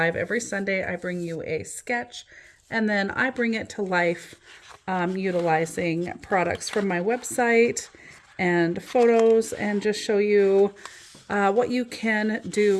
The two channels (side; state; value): both; identical; correlation 1.00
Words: every Sunday. I bring you a sketch, and then I bring it to life utilizing products from my website and photos, and just show you what you can